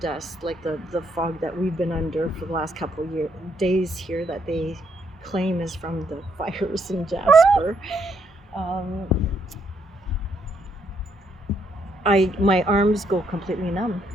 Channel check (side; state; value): both; normal; correlation 0.73